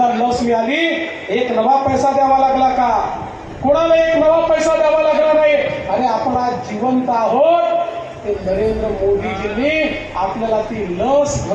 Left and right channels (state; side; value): identical; both; correlation 1.00